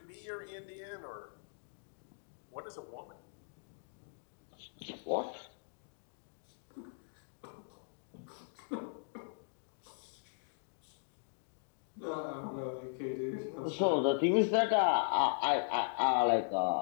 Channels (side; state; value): right; silent; digital silence